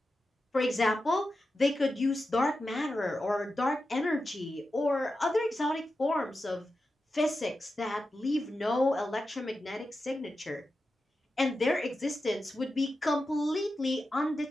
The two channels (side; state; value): both; normal; correlation 0.91